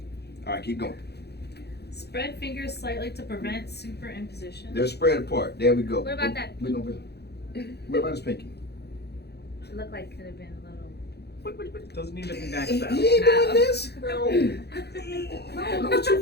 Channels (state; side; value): late; right; 0.48 ms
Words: All right, keep going. Spread fingers slightly to prevent superimposition. They're spread apart. There we go. What about that What about his pinky? It looked like it could have been a little. Doesn't need to be back He that. ain't doing this. No, too